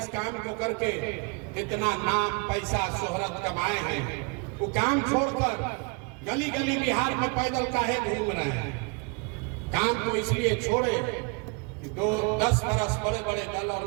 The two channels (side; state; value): left; quieter; 32.4 dB